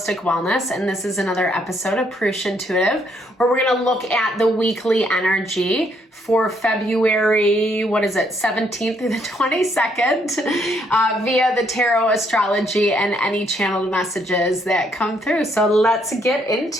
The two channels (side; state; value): both; normal; correlation 0.71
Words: Wellness, and this is another episode of Purusha Intuitive, where we're going to look at the weekly energy for February, 17th through the 22nd, via the tarot, astrology, and any channeled messages that come through. So let's get